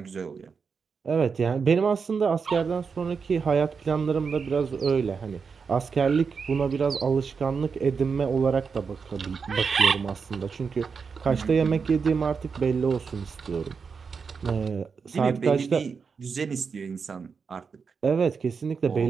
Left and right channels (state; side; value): quieter; left; 5.6 dB